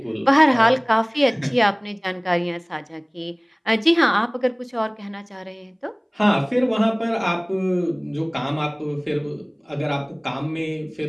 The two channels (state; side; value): identical; both; correlation 1.00